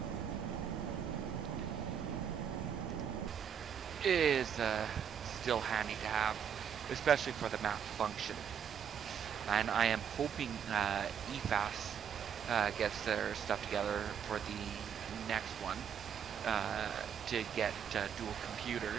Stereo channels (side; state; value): left; quieter; 8.0 dB